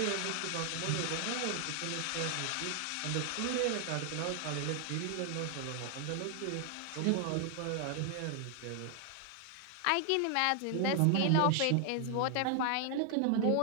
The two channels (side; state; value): both; different; correlation 0.00